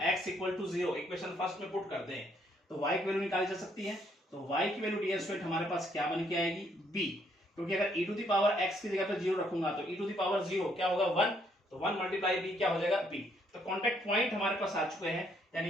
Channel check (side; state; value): both; normal; correlation 0.70